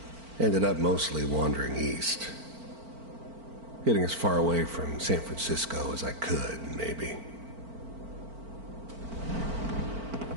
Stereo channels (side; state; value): left; late; 4.4 ms